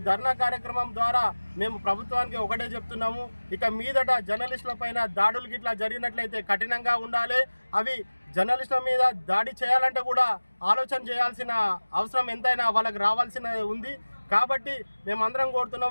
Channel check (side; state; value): both; inverted; correlation -1.00